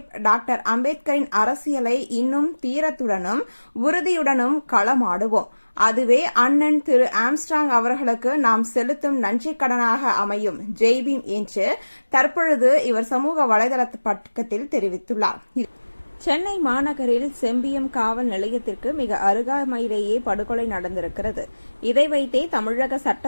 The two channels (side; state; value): both; inverted; correlation -1.00